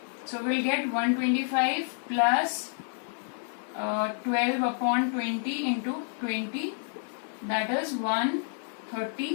So we'll get 125 plus 12 upon 20 into 20, that is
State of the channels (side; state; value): right; silent; 57 dB below the other